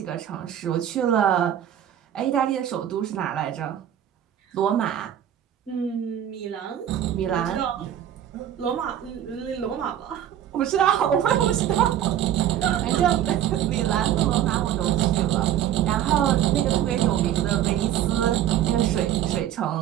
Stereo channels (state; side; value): quieter; left; 10.9 dB